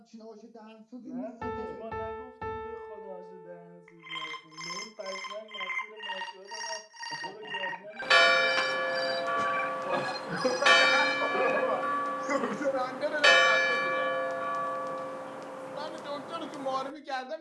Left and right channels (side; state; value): both; identical; correlation 1.00